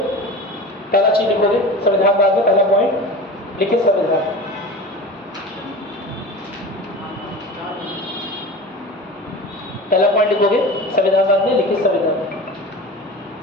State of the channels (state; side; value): normal; both; correlation 0.33